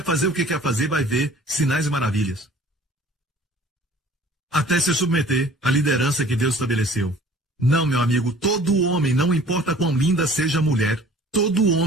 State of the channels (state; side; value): normal; both; correlation 0.50